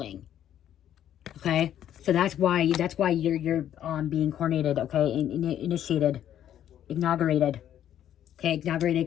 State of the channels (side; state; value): right; quieter; 10.8 dB